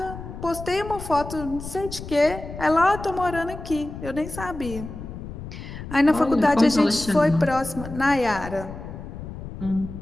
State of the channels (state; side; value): noise; left; rumble, 11 dB below the sound